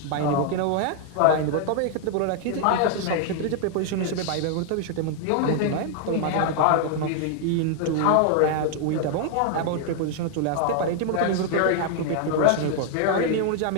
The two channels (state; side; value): different; both; correlation 0.00